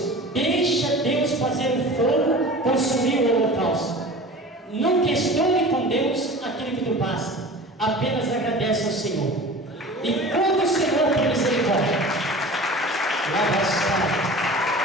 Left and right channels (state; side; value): normal; both; correlation 0.38